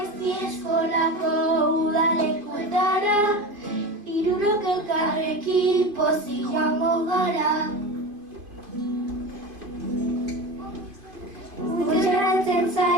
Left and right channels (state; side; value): late; left; 2.5 ms